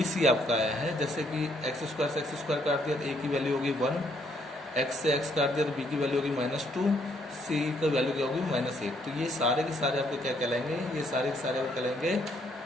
आपका आया है, जैसे कि x² से x² काट दिया तो a की वैल्यू होगी 1, x से x काट दिया तो b की वैल्यू होगी -2, c की वैल्यू क्या होगी -8। तो ये सारे के सारे आपको क्या कहलाएंगे, ये सारे के सारे आपको कहलाएंगे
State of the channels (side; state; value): both; normal; correlation 0.70